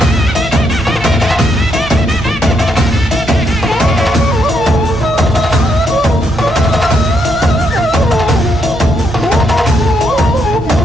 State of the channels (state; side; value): normal; both; correlation 0.76